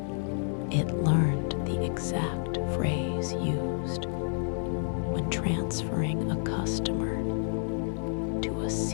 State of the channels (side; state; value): right; silent; digital silence